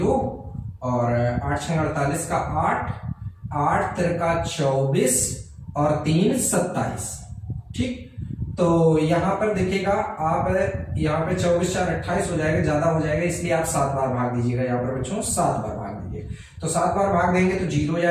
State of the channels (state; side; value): identical; both; correlation 1.00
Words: और 8 6 48 का 8, 8 तिरका 24 और 3 27, ठीक। तो यहाँ पर देखिएगा आप यहाँ पे 24 4 28 हो जाएगा, ज्यादा हो जाएगा इसलिए आप 7 बार भाग दीजिएगा। यहाँ पर बच्चों 7 बार भाग दीजिए। तो 7 बार भाग देंगे तो 0